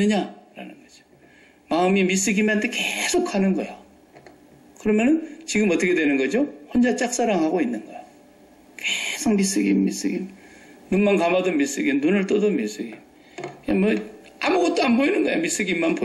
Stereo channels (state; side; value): identical; both; correlation 1.00